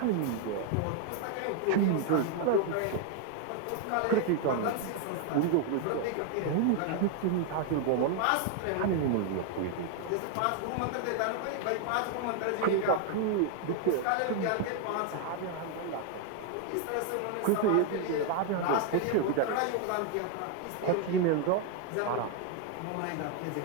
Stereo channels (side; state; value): both; different; correlation 0.00